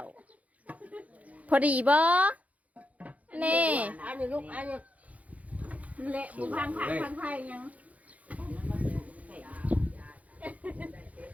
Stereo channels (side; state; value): left; late; 0.069 ms